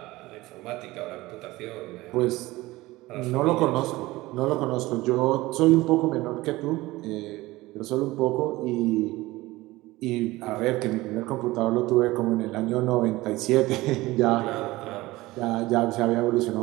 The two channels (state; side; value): quieter; left; 19.2 dB